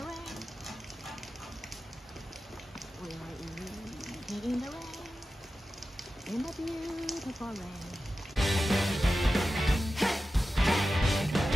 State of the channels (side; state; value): both; normal; correlation 0.93